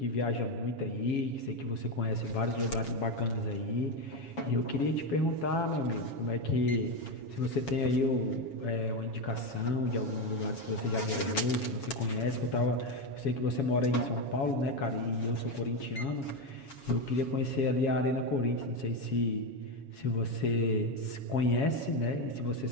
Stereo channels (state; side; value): late; right; 7.2 ms